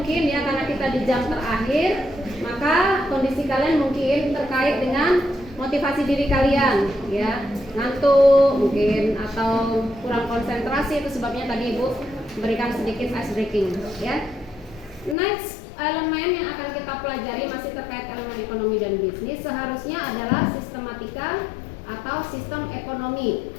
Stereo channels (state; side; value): drops out; right; at 15.2 s